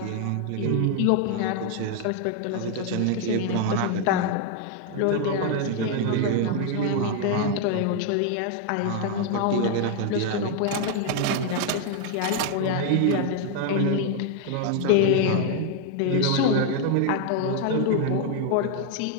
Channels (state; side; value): different; both; correlation 0.00